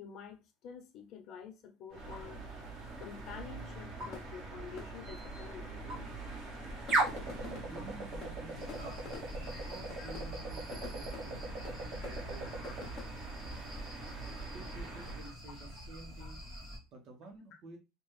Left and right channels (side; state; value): both; normal; correlation 0.52